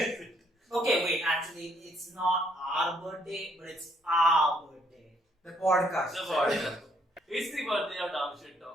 Okay, wait, actually, it's not our birthday, but it's our birthday. the podcast. The podcast. It's the birthday of Dumb Shit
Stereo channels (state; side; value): normal; both; correlation 0.69